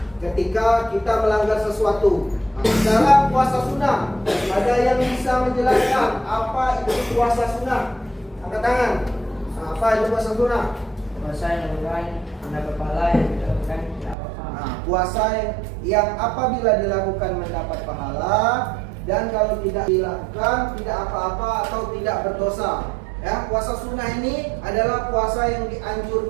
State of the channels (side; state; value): left; drops out; at 14.2 s